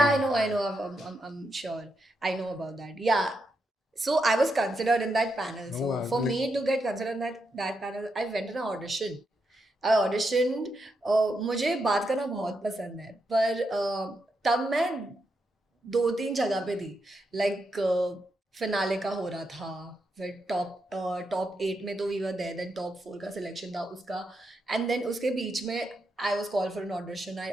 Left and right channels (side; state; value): both; normal; correlation 0.83